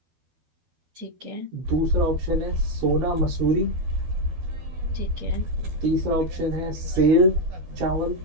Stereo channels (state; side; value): late; left; 12 ms